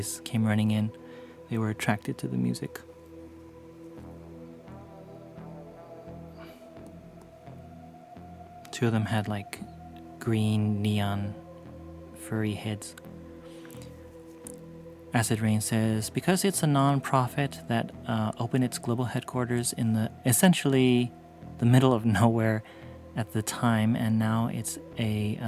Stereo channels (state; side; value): identical; both; correlation 1.00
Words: came running in. They were attracted to the music. Two of them had like green neon furry heads. Acid Rain says, because it's a non-profit that opened its global headquarters in the essentially the middle of nowhere at the time, and now it's a